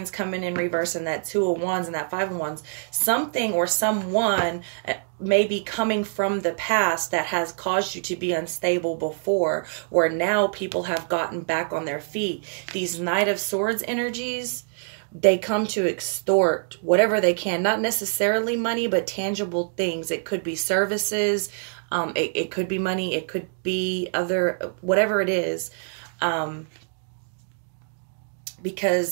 coming in reverse, and that 2 of Wands and that 5 of Wands, something or someone may be coming from the past that has caused you to be unstable before, where now people have gotten back on their feet. These Knight of Swords energies, they come to extort whatever they can, not necessarily money, but tangible things. It could be services, it could be money, it could be other, whatever it is.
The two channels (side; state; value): left; silent; digital silence